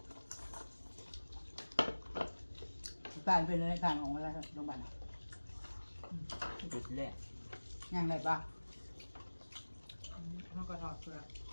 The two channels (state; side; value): inverted; both; correlation -1.00